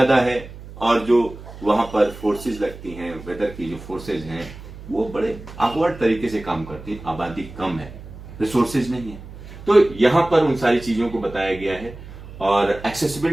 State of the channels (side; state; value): right; noise; hum, 15 dB below the sound